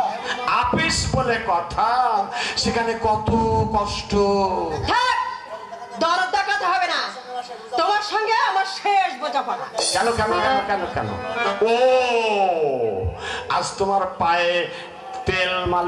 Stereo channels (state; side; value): identical; both; correlation 1.00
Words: আপিস বলে কথা, সেখানে কত কষ্ট। দরদ দেখাতে হবে না, তোমার সঙ্গে আমার শেষ বোঝাপড়া। কেন কেন কেন কেন কেন? ও, আজ তোমার পায়ে তেল